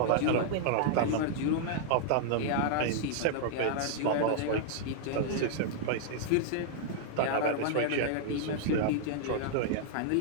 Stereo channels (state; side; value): different; both; correlation -0.01